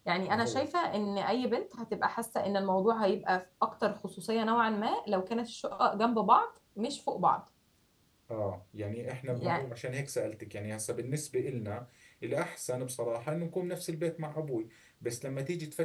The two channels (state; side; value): identical; both; correlation 1.00